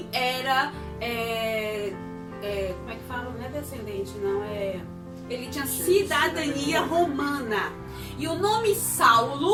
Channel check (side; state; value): both; identical; correlation 1.00